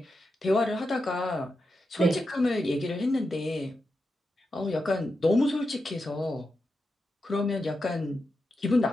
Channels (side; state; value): both; normal; correlation 0.88